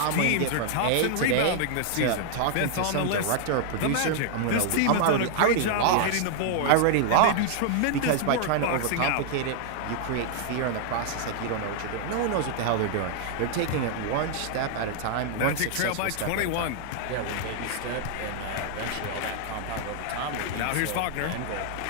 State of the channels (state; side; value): different; both; correlation 0.00